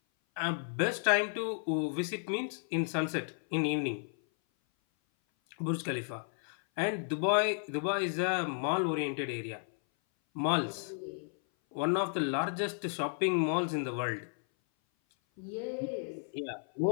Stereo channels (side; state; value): right; silent; 56 dB below the other